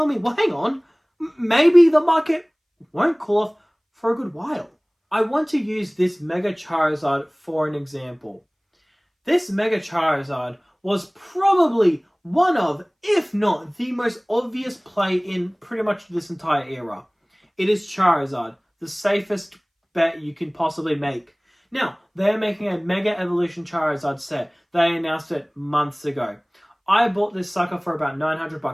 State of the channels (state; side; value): identical; both; correlation 1.00